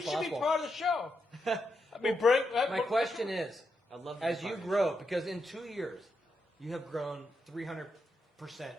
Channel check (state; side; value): normal; both; correlation 0.84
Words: should be possible. part of the show. I mean, bring. My question is, I love the as you department. grow, because in 2 years, you have grown 300%